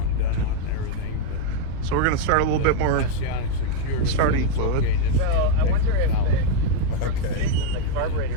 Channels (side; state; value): both; different; correlation 0.01